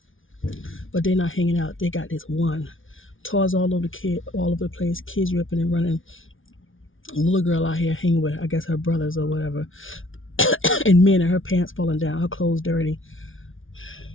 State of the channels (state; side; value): late; right; 0.57 ms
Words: But they're not hanging out. They got this one. Toys all over the place. Kids ripping and running. A little girl out here hanging with, I guess, her brothers or whatever. And men and her pants falling down. Her clothes dirty.